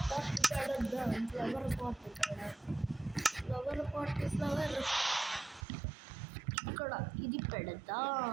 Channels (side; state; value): left; drops out; at 5.7 s